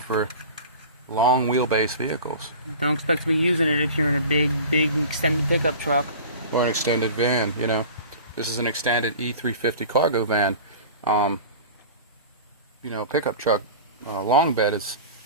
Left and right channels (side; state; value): both; inverted; correlation -0.37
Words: for long wheelbase vehicles. Don't expect to be using it if you're in a big extended pickup truck. Or an extended van, This is an extended E350 cargo van. Pickup truck, long bed is,